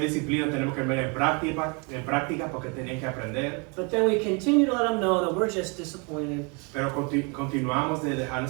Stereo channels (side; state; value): left; quieter; 32.5 dB